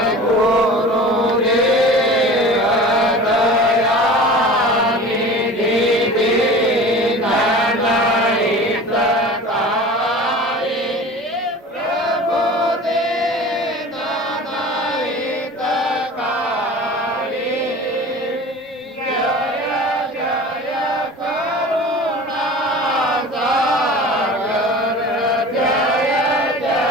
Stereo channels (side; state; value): both; normal; correlation 0.38